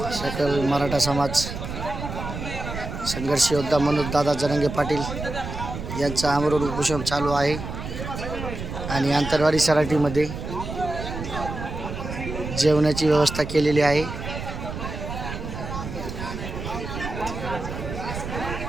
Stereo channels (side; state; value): right; noise; rumble, 7 dB below the sound